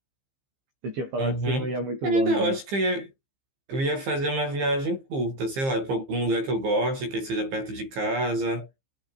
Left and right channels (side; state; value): left; late; 15 ms